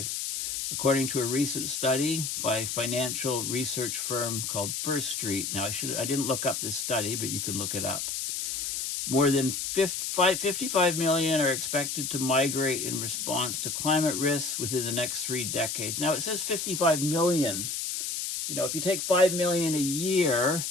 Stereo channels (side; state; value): left; noise; hiss, 3 dB below the sound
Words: according to a recent study by a financial research firm called First Street. Now, I didn't look up this study, but you can look it up. More than 55 million are expected to migrate in response to climate risks within the next 3 decades. Now, it says 55 million. If you take 5 million a year